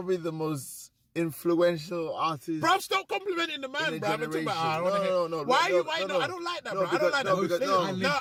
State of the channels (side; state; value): both; identical; correlation 1.00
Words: the most influential artist. Bro, stop complimenting the man, bro. No. Why are you? No, I don't like that, bro. I don't like that. No,